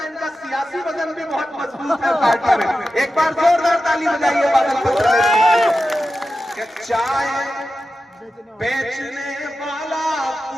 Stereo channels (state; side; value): normal; both; correlation 0.92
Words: इनका सियासी वजन भी बहुत मजबूत है पार्टी में। एक बार जोरदार ताली बजाइए बादल पत्र। चाय बेचने वाला